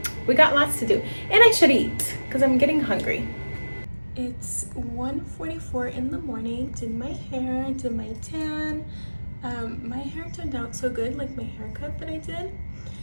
we got lots to do, and I should eat because I'm getting hungry. It's 1:44 in the morning. Did my hair, did my tan. My hair turned out so good, like my haircut that I did.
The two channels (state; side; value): inverted; both; correlation -1.00